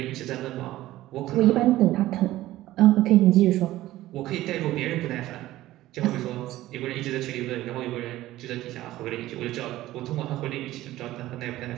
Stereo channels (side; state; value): left; quieter; 15.6 dB